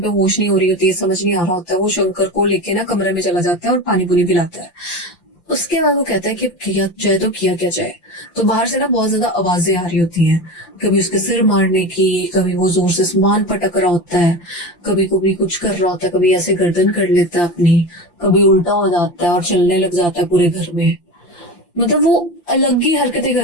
पे होश नहीं हो रही होती है, समझ नहीं आ रहा होता है। वो शंकर को लेके ना कमरे में चला जाता है और पानी पुनी पिलाता है। उसके बाद वो कहता है कि किया जाए तो किया क्या जाए। तो बाहर से ना बहुत ज्यादा आवाजें आ रही होती हैं, कभी उसके सिर मारने की, कभी वो जोर से सामान पटक रहा होता है, कभी कभी कुछ कर रहा होता है, कभी ऐसे गर्दन कर लेता है अपनी, कभी उल्टा हो जाता है और चलने लग जाता है पूरे घर में। मतलब वो अलग ही हरकतें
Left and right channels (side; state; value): right; late; 5.8 ms